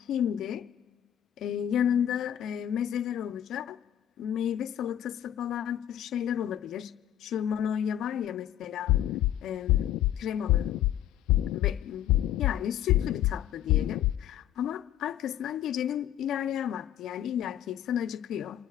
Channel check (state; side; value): quieter; right; 11.1 dB